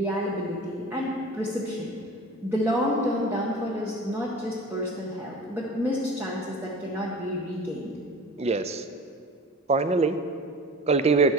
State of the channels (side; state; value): both; normal; correlation 0.38